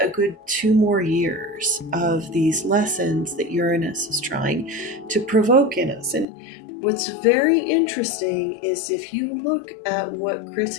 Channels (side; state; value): right; drops out; at 6.2 s